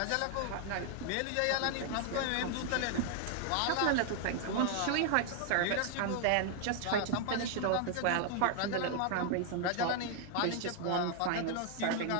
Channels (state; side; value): different; both; correlation 0.00